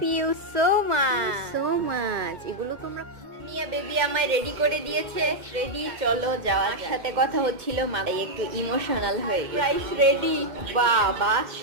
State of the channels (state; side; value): late; left; 2.2 ms